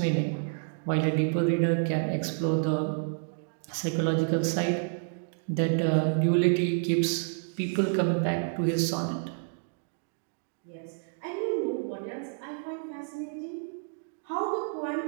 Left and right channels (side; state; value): left; silent; digital silence